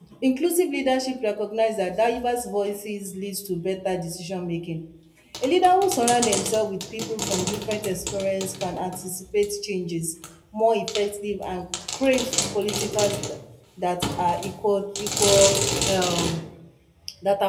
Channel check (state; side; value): identical; both; correlation 1.00